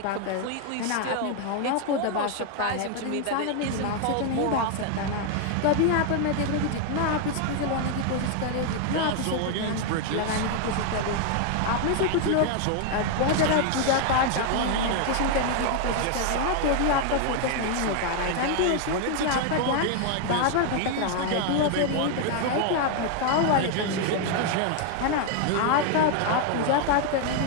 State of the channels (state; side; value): different; both; correlation 0.00